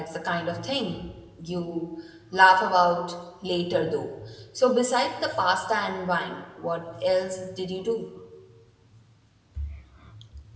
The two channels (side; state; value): both; identical; correlation 1.00